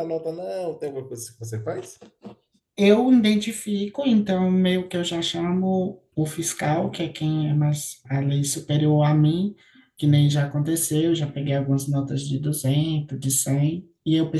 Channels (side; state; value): both; identical; correlation 1.00